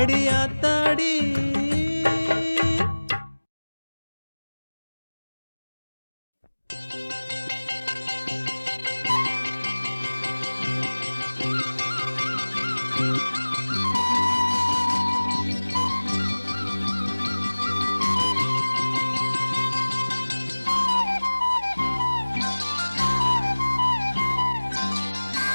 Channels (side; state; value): both; inverted; correlation -1.00